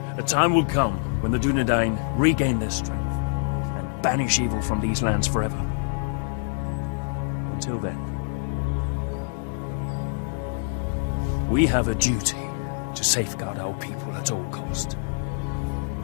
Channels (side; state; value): right; silent; 61 dB below the other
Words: A time will come when the Dunedain regain their strength and banish evil from these lands forever. Until then, we have a duty to safeguard our people at all cost.